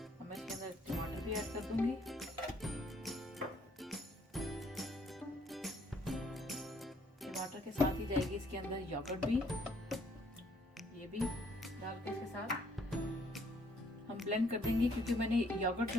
मैं इसके अंदर टमाटर भी ऐड कर दूंगी। टमाटर के साथ ही जाएगी इसके अंदर योगर्ट भी, ये भी डाल के इसके साथ हम ब्लेंड कर देंगे। क्योंकि मैंने योगर्ट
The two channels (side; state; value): both; normal; correlation 0.66